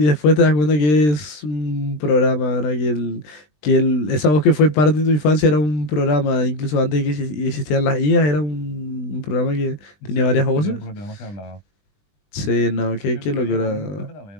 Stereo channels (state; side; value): late; right; 20 ms